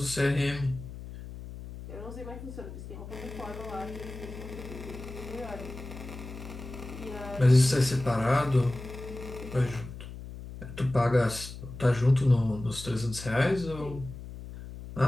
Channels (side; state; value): left; noise; hum, 12 dB below the sound